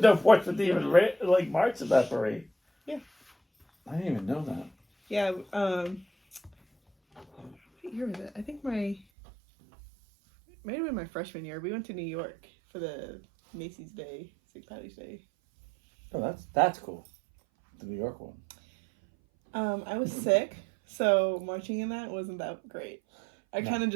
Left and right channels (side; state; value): left; drops out; at 9.1 s